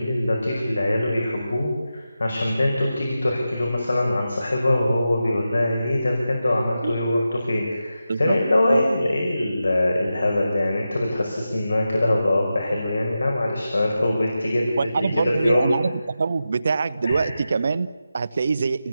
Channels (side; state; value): both; inverted; correlation -0.91